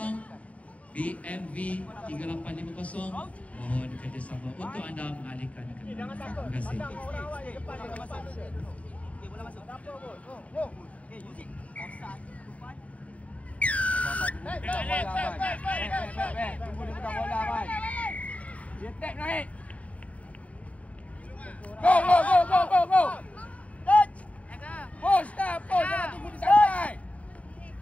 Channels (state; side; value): late; right; 0.067 ms